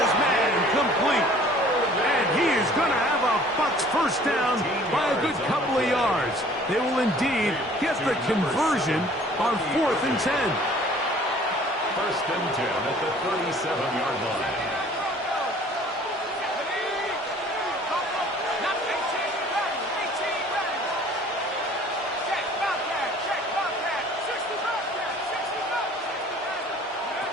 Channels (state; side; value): normal; both; correlation 0.52